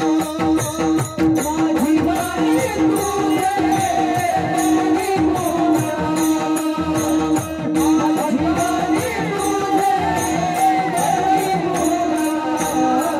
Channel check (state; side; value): identical; both; correlation 1.00